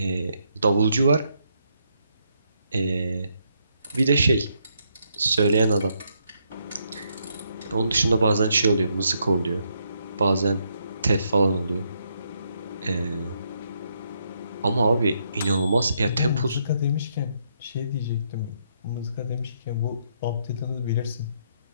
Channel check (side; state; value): both; inverted; correlation -0.76